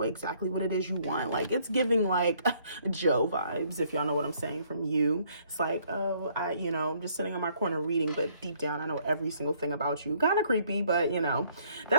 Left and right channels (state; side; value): inverted; both; correlation -0.64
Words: exactly what it is you want. Like it's giving like Joe vibes, if y'all know what I'm saying, from you. It's like, oh, I'm just sitting on my corner reading, but deep down, I know every single thing about you. Kind of creepy, but